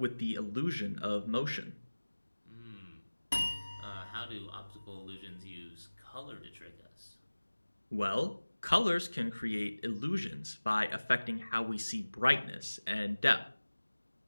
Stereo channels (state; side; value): inverted; both; correlation -1.00